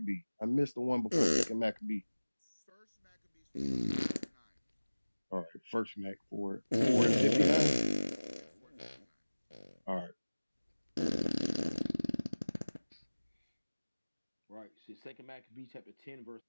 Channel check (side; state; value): both; inverted; correlation -1.00